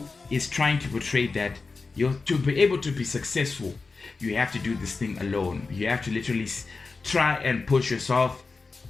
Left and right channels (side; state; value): right; quieter; 4.2 dB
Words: is trying to portray that to be able to be successful, you have to do this thing alone. You have to literally try and push yourself